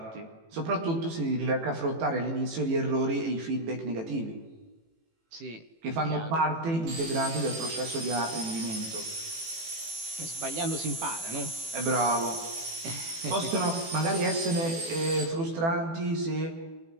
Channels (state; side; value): late; left; 18 ms